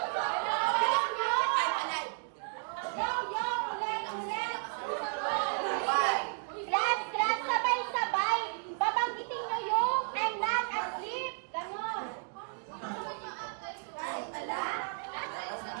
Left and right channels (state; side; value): silent; left; 56 dB below the other